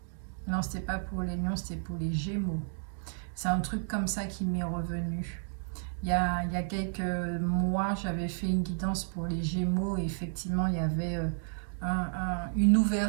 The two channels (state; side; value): silent; left; digital silence